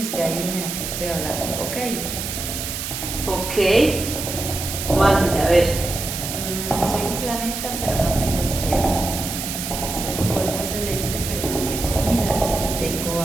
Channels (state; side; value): noise; right; hiss, 5 dB below the sound